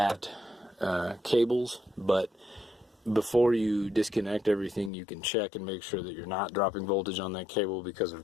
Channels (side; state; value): right; drops out; at 4.9 s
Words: cables. But before you disconnect everything, you can check and make sure that you're not dropping voltage on that cable because